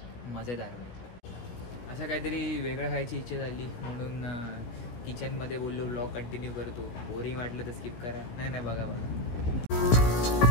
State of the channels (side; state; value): right; late; 17 ms